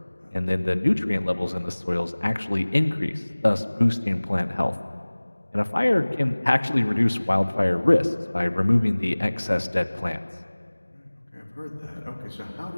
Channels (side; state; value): both; inverted; correlation -1.00